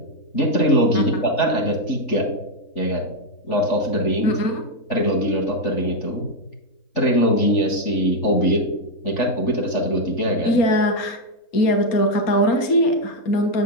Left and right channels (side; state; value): right; late; 3.8 ms